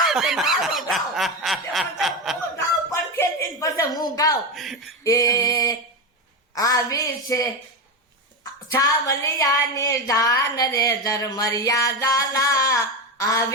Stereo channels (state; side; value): normal; both; correlation 0.16